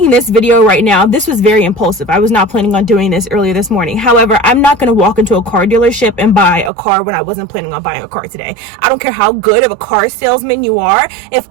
this video right now, this was very impulsive. I was not planning on doing this earlier this morning. However, I'm not going to walk into a car dealership and buy a car when I wasn't planning on buying a car today. I don't care how good of a car salesman you are. If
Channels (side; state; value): left; drops out; at 6.7 s